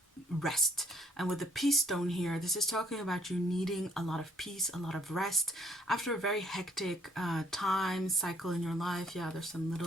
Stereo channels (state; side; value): normal; both; correlation 0.65